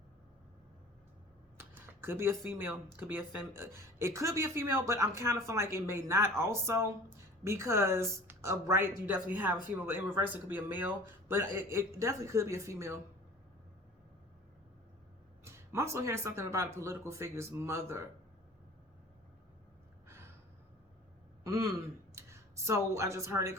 Could be a female, could be a it could be a female, but I'm kind of feeling like it may not also, because of right, you definitely have a female, but in reverse, it could be a male, but it definitely could be a female. I'm also hearing something about a political figure's mother. So I just heard it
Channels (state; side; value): normal; both; correlation 0.44